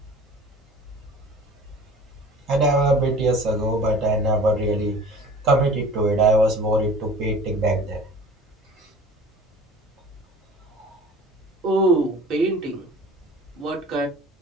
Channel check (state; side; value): normal; both; correlation 0.43